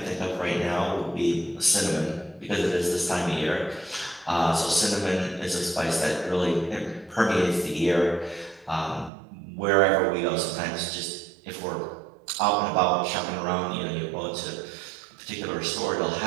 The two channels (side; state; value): left; drops out; at 9.1 s